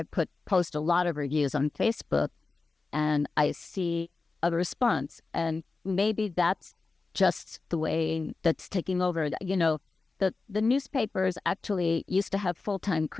post a lot of reviews on Facebook and I see a response, and maybe that's just the way that's taking over. the newspapers actually used to have full-time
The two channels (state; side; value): quieter; right; 3.8 dB